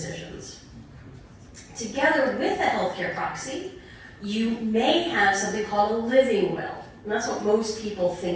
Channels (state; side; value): identical; both; correlation 1.00